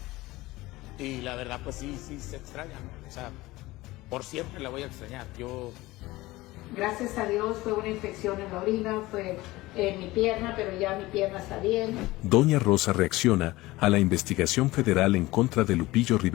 Y la verdad pues sí se extraña, ¿no? O sea, por siempre la voy a extrañar. Gracias a Dios fue una infección en la orina, fue en mi pierna, pero ya mi pierna está bien. Doña Rosa reacciona a la investigación federal en contra de Lupillo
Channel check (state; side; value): quieter; right; 19.2 dB